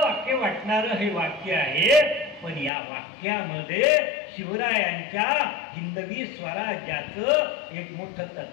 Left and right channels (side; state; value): right; drops out; at 2.7 s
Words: वाक्य वाटणारं हे वाक्य आहे. पण या वाक्यामध्ये शिवरायांच्या हिंदवी स्वराज्याचं एक मोठं